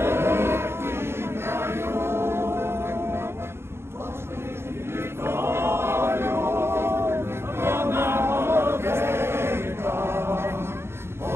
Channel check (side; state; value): left; late; 0.12 ms